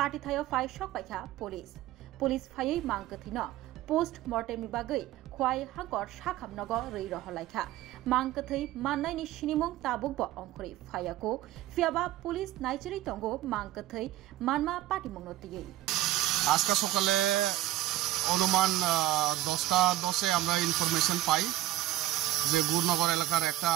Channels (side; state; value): left; quieter; 15.1 dB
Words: थाय फाइ शक पाइखा पुलिस फायै मांकथैनो पोस्ट मर्टेमनि बागै खवाइ हांकर साखामनग रै रहलाइखा मांकथै माननायनि सिनिमुं ताबुक ब अंखरै फायाको फियाबा पुलिस नाइचेरै तंगो मांकथै मानमा पार्टी मंगनतियै আজকে সকালে অনুমান 10টা 10 এ আমরা ইনফরমেশন পাই যে গুরনগর এলাকার একটা